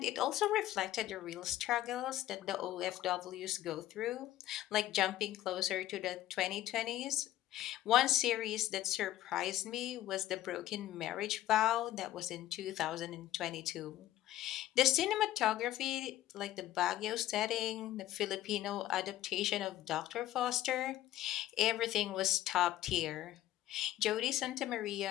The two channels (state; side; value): quieter; right; 14.0 dB